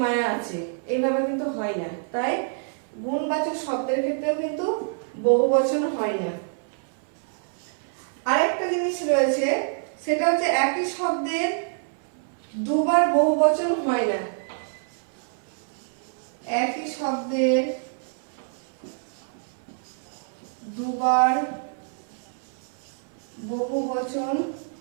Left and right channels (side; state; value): left; silent; 60 dB below the other